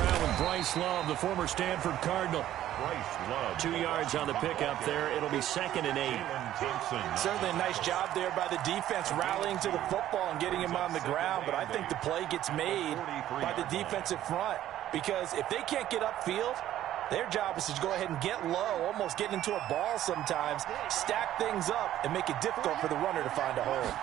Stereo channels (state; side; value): quieter; left; 12.6 dB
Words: with Bryce Love, the former Stanford Cardinal. Bryce Love. 2 yards on the pickup there. It'll be 2nd and 8. Certainly a nice job there by the defense rallying to the football and getting him on the ground, but I think the play gets made by the defensive front because if they can't get upfield, their job is to go ahead and get low, almost get into a ball sometimes, stack things up, and make it difficult for the runner to find a hole.